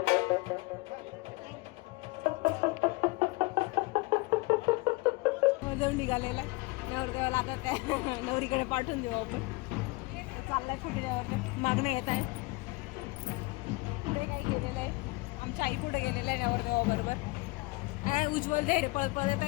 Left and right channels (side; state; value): right; quieter; 23.7 dB